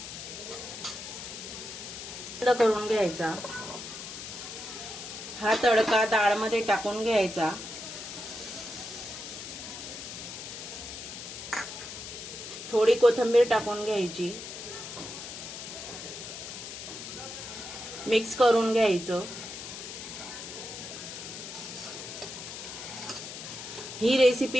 बंद करून घ्यायचा. हा तडका डाळमध्ये टाकून घ्यायचा. थोडी कोथिंबीर टाकून घ्यायची. मिक्स करून घ्यायचं. ही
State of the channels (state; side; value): noise; left; hiss, 9 dB below the sound